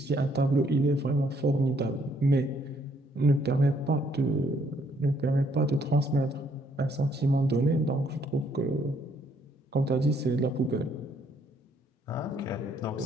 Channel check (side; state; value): both; normal; correlation 0.68